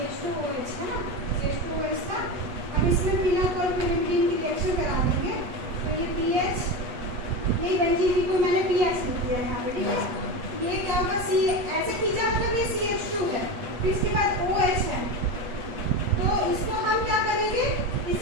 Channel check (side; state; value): left; late; 8.2 ms